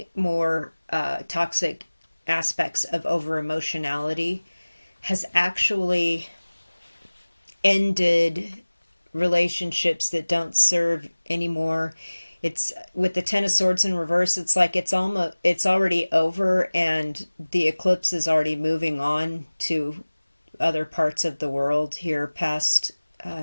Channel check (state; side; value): inverted; both; correlation -1.00